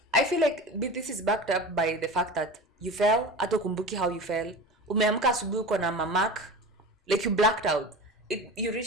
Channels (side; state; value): both; normal; correlation 0.32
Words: I feel like this is backed up by the fact that you fell, hata kumbuki how you fell. Umeamka asubuhi uko na mamak, like you blacked out. You